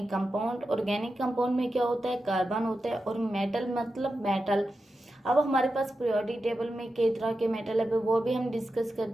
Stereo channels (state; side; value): normal; both; correlation 0.90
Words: कंपाउंड में क्या होता है, कार्बन होता है, और मेटल मतलब मेटल। अब हमारे पास पीरियोडिक टेबल में कई तरह के मेटल है, वो भी हम डिस्कस